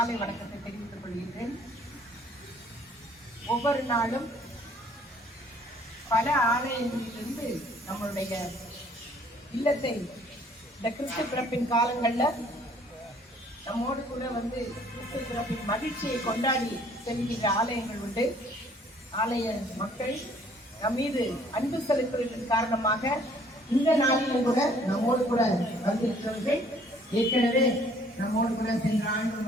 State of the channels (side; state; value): both; normal; correlation 0.59